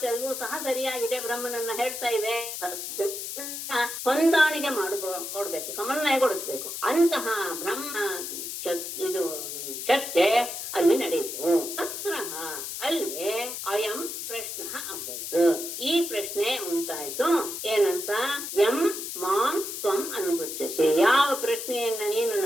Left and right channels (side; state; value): left; noise; hiss, 6 dB below the sound